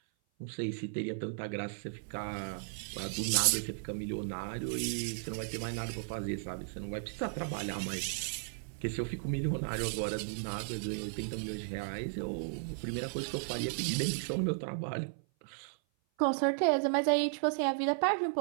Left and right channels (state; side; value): silent; left; 54 dB below the other